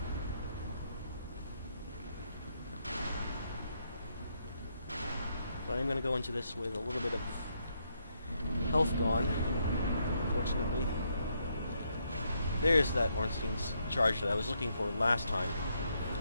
But I'm going to go into this with a little bit of health gone, unfortunately. There's that Ornstein's charge that I was looking for last time.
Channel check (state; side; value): inverted; both; correlation -0.76